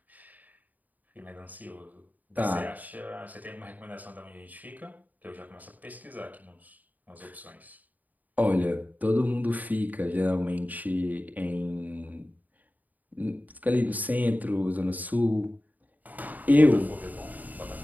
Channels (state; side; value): late; left; 0.080 ms